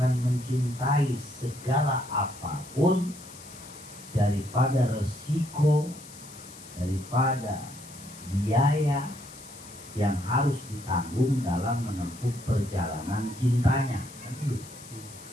mencintai segala apapun daripada resiko, daripada biaya yang harus ditanggung dalam menempuh perjalanan cintanya.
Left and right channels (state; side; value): noise; left; hiss, 18 dB below the sound